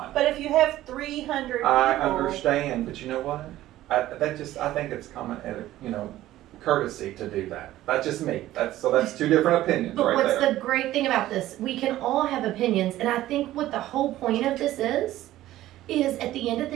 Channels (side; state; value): left; quieter; 14.7 dB